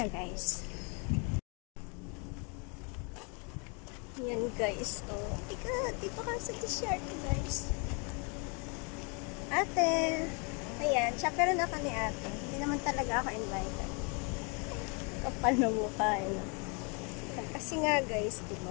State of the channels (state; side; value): quieter; right; 34.3 dB